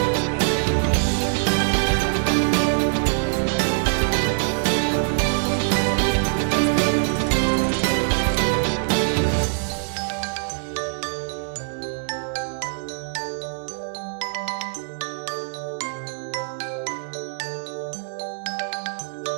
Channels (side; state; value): left; silent; digital silence